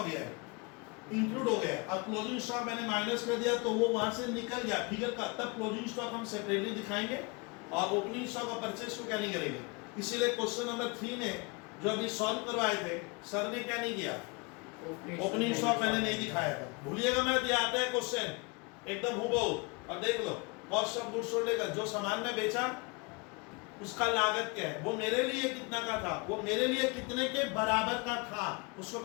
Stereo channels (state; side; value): quieter; right; 29.0 dB